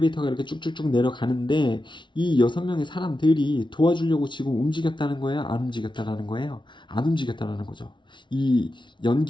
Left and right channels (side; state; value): right; late; 0.23 ms